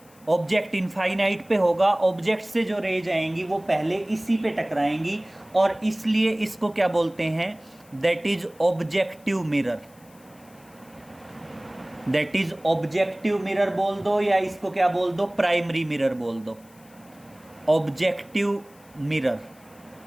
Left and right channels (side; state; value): left; noise; hiss, 28 dB below the sound